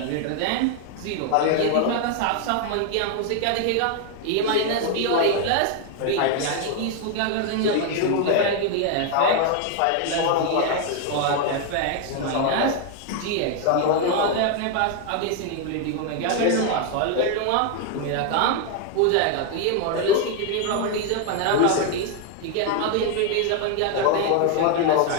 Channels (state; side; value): different; both; correlation 0.01